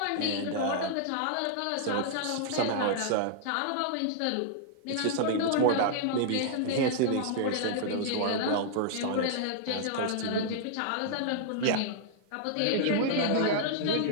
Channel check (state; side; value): different; both; correlation -0.01